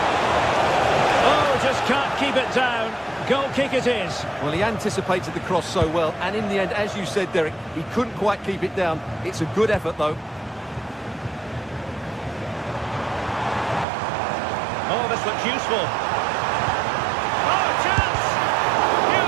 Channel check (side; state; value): left; drops out; at 13.9 s